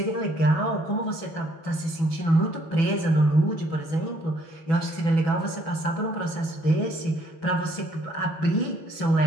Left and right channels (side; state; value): right; late; 6.1 ms